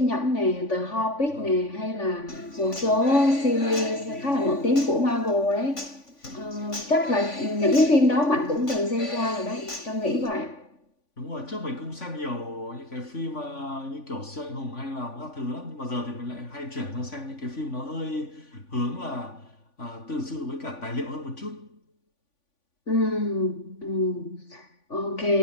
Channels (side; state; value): right; late; 3.5 ms